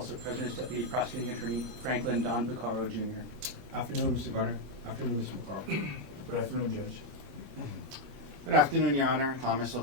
present is Deputy Prosecuting Attorney Franklin Don Buccaro, Jr. Afternoon, Mr. Garner. Afternoon, Mr. McCarl. Good afternoon, Judge. Good afternoon, Your Honor. Thomas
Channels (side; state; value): both; normal; correlation 0.02